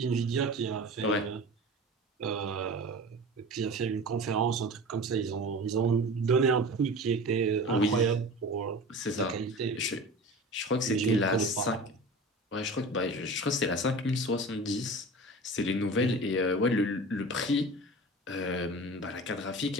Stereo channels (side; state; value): both; normal; correlation 0.35